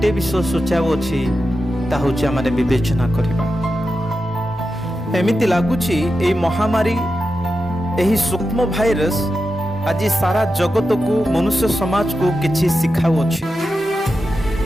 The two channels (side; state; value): both; normal; correlation 0.90